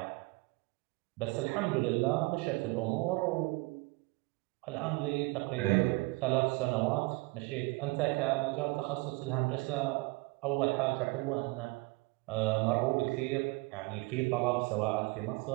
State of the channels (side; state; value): left; quieter; 24.9 dB